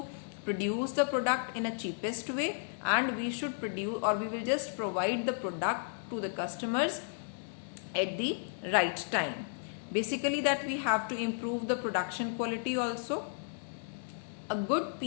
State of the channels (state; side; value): silent; right; digital silence